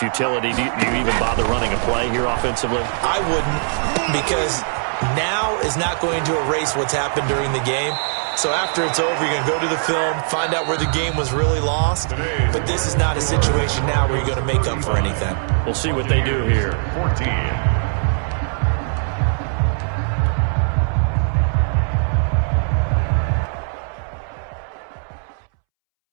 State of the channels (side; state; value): left; silent; 66 dB below the other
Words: Do you even bother running a play here offensively? I wouldn't, because now is not going to erase what's happened during the game. So after it's over, you're going to go to the film, find out where the game was really lost. But this is not a situation now where you're going to make up for anything. We'll see what they do here. 14.